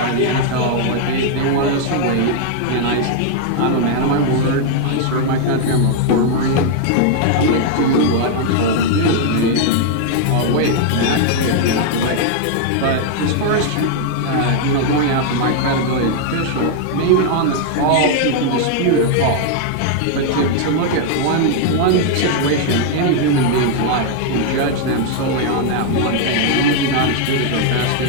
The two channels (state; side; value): different; both; correlation 0.00